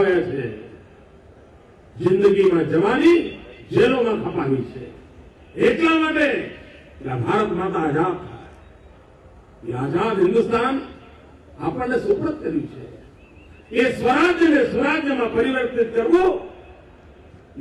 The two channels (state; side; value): identical; both; correlation 1.00